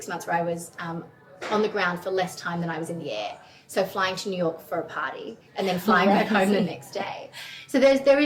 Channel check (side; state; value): both; identical; correlation 1.00